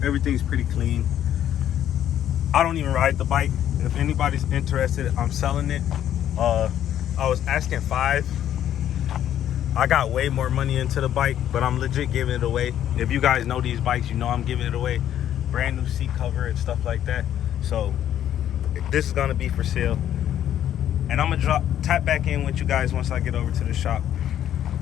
Everything's pretty clean. I don't even ride the bike. If anybody's interested, I'm selling it. I was asking $5,000. I got way more money into the bike, but I'm legit giving it away. If you guys know these bikes, you know I'm giving it away. Brand new seat cover and stuff like that. So this is gonna be for sale. And I'm gonna tap back in with you guys once I get over to the shop.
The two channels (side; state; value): right; quieter; 10.9 dB